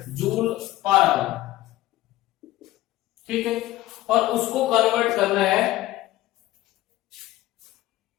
joule per hour. ठीक है, और उसको कन्वर्ट करना है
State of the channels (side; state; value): right; quieter; 16.3 dB